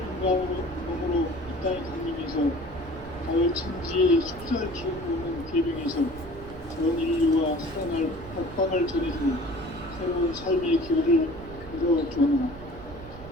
몸으로 이 땅에 강림해서 가을 천지의 숲살 기운이 오는 궤병에서 전 인류와 살아날 박방을 전해주고 새로운 삶의 기회를 이뤄주었노라.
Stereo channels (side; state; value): right; noise; rumble, 16 dB below the sound